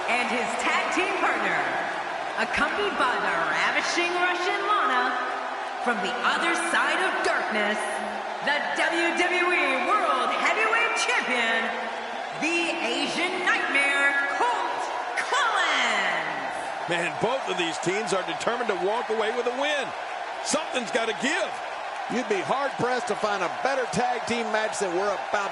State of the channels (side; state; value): both; identical; correlation 1.00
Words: And his tag team partner, accompanied by the ravishing Russian Lana, from the other side of darkness, the WWE World Heavyweight Champion, the Asian Nightmare, Colt Collins. Man, both of these teams are determined to walk away with a win. Something's got to give. You'd be hard-pressed to find a better tag team match than we're